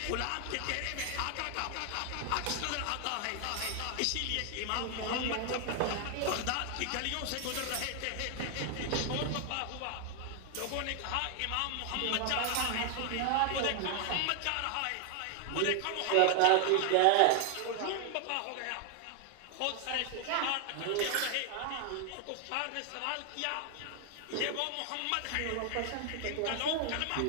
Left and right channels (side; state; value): both; different; correlation 0.00